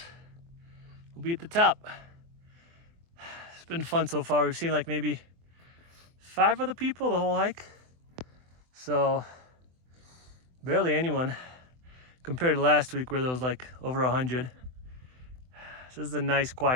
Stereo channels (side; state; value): left; late; 24 ms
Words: We'll be at the top. It's been fun so far. We've seen like maybe 5 other people the whole hike. So barely anyone compared to last week where there was like over 100. So this is a nice